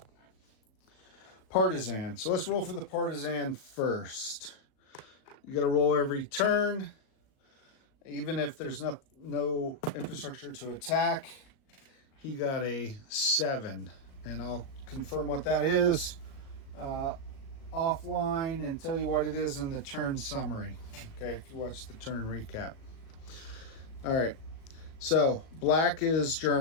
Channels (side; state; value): right; late; 37 ms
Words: partisan. So let's roll for the partisan first. You got to roll every turn, even if there's no infrastructure to attack. He got a 7, and I'll confirm what that is offline and tell you what it is in the turn summary. Okay, if you watch the turn recap. All right, so black is